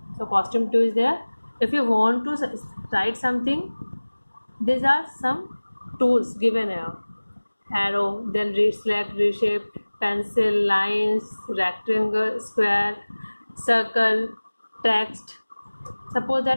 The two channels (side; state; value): both; inverted; correlation -1.00